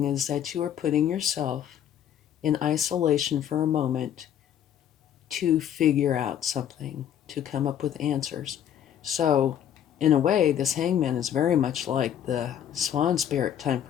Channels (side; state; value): right; quieter; 9.9 dB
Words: is that you are putting yourself in isolation for a moment to figure out something, to come up with answers. So, in a way, this Hangman is very much like the Swan Spirit, time